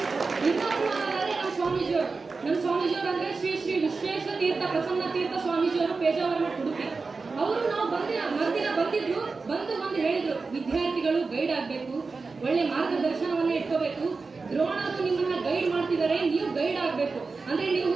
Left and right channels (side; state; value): left; quieter; 4.2 dB